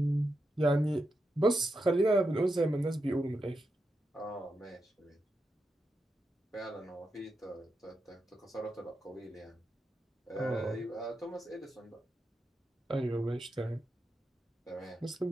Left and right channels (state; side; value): normal; both; correlation 0.86